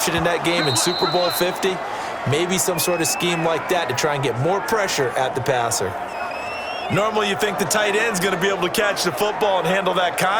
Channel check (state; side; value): identical; both; correlation 1.00